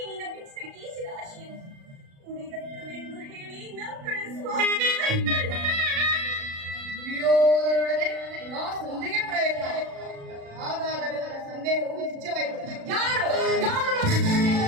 ನಿನ್ನ ಬಿಚ್ಚಿದ ಕೀಸಿದ ಆಶೆಯನ್ನು ಮುಡಿದತ್ತವೆಂದು ಹೇಳಿ ನ ಕಳಿಸುವ ದುರ್ಯೋಧನೊಡನೆ ನಾ ಸಂಧಿಗೆ ಪ್ರಯತ್ನ. ಹಾಗಾದರೆ ನನ್ನ ಸಂದೇಹವು ನಿಜವಾಯಿತು. ಯಾರು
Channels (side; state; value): left; late; 36 ms